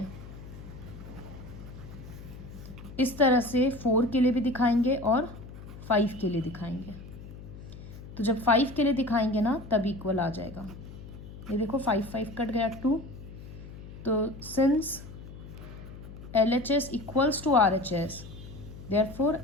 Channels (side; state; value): left; noise; hum, 14 dB below the sound